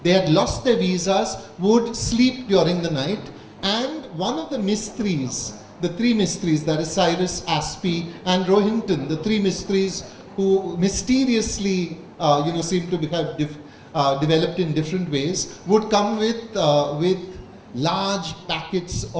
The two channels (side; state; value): both; identical; correlation 1.00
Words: they had lost their visas, would sleep during the night. And one of the mistries, the three mistries, that is Cyrus, Aspi and Rohinton, the three mistries who mysteriously seem to have developed in different ways, would come with large packets